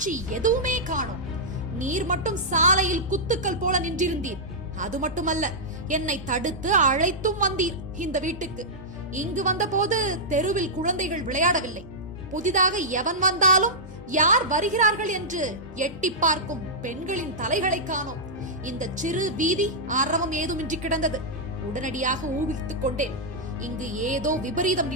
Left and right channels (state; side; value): normal; both; correlation -0.10